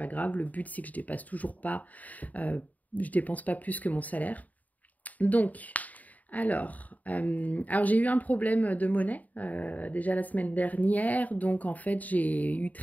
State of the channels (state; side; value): late; right; 0.075 ms